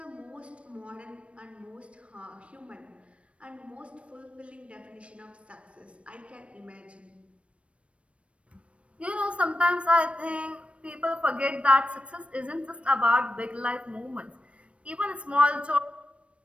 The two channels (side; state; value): left; late; 0.061 ms